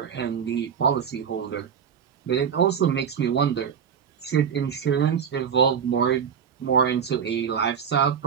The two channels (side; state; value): left; quieter; 7.6 dB